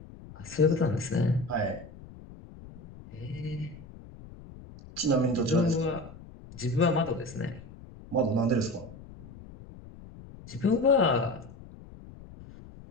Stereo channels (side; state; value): left; noise; rumble, 18 dB below the sound